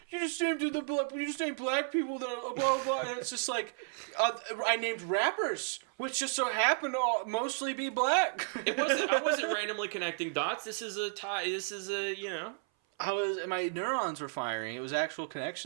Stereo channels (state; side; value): silent; left; 56 dB below the other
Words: black people, that blah blah, and it's just like, I named rappers, which just so happen to mostly be black. I wasn't randomly connecting dots. This is a tie. My neurons were firing. It was actual